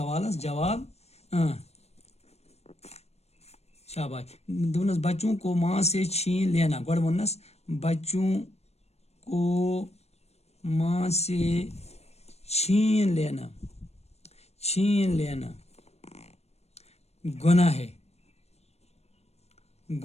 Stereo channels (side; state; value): right; late; 0.31 ms